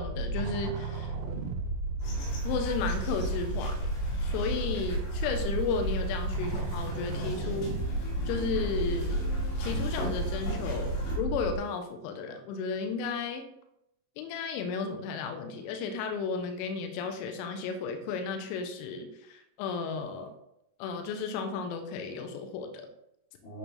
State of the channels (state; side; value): late; right; 22 ms